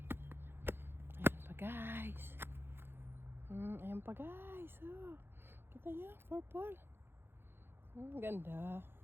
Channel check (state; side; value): late; left; 0.11 ms